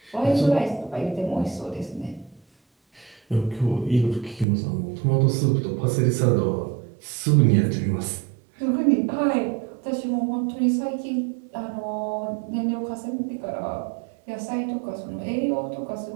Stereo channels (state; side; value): drops out; left; at 4.5 s